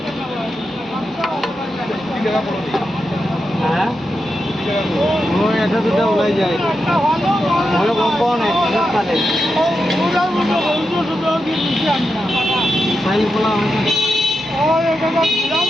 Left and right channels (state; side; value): normal; both; correlation 0.88